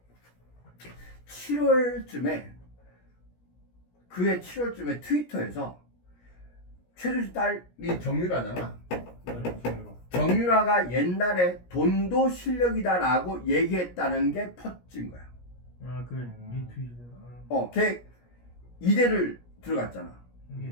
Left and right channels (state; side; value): late; right; 17 ms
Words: 7월쯤에 그해 7월쯤에 트위터에서 최순실 딸이 정유라잖아. 정유라가 옛날에 돈도 실력이다라고 얘기했다는 게 퍼진 거야. 리트윗이잖아. 걔 이대를 들어갔잖아.